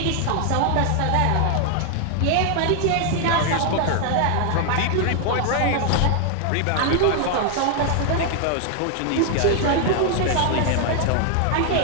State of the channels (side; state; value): both; different; correlation 0.00